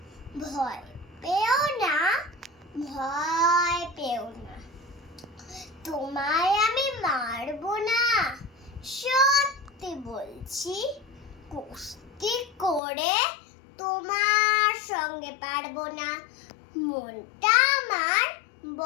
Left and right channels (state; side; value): drops out; right; at 12.8 s